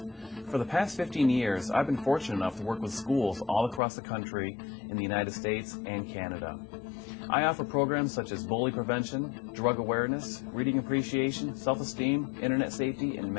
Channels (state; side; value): drops out; right; at 3.8 s